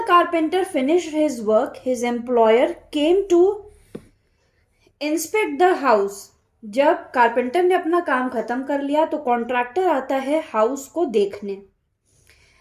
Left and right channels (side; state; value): both; identical; correlation 1.00